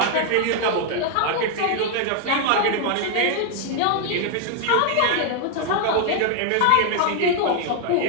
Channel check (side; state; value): both; different; correlation 0.00